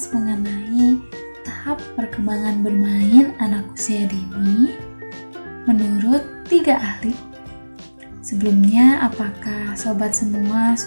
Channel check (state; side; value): inverted; both; correlation -1.00